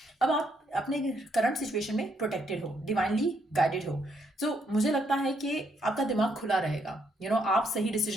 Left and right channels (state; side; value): normal; both; correlation 0.73